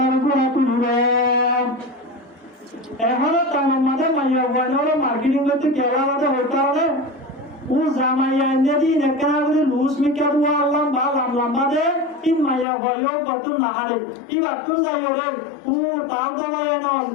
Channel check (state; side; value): drops out; right; at 12.7 s